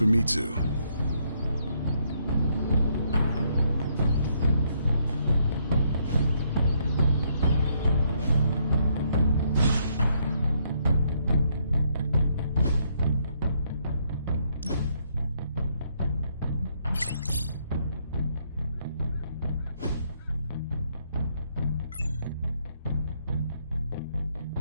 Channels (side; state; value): both; inverted; correlation -0.73